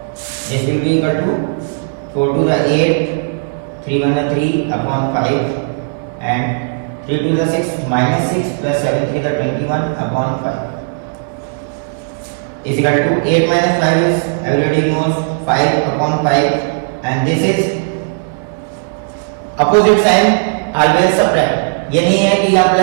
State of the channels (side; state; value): left; silent; digital silence